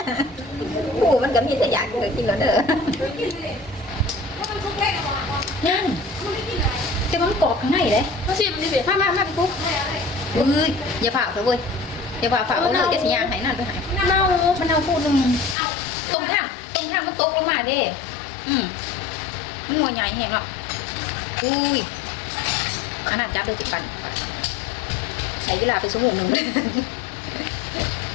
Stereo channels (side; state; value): right; drops out; at 15.6 s